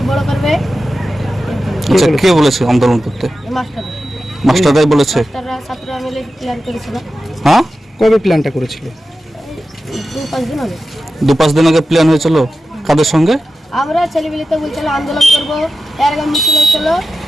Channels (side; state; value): both; normal; correlation 0.92